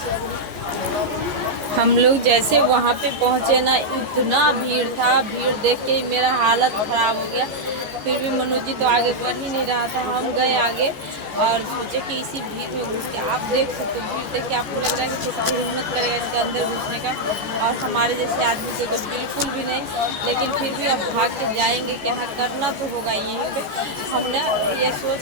हम लोग जैसे वहाँ पे पहुँचे ना, इतना भीड़ था, भीड़ देख के मेरा हालत खराब हो गया। फिर भी मनोज जी तो आगे बढ़ ही नहीं रहा था, हम गए आगे और सोचे कि इसी भीड़ में घुस के, आप देख सकते हो भीड़ देख के आपको लग रहा है कि किसी को हिम्मत करेगा इसके अंदर घुसने का, और हमारे जैसे आदमी से तो बिल्कुल भी नहीं। लेकिन फिर भी अब भाग के जाएंगे, क्या करना तो होगा यहीं पे। हमने ये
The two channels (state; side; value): late; left; 14 ms